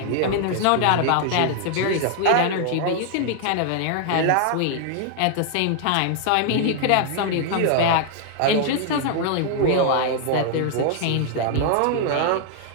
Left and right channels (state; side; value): different; both; correlation -0.01